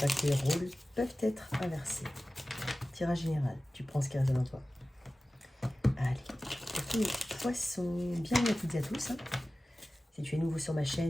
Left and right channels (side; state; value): both; normal; correlation 0.96